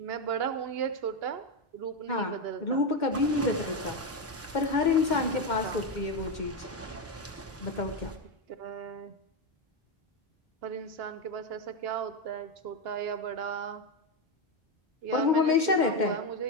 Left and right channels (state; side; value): normal; both; correlation 0.09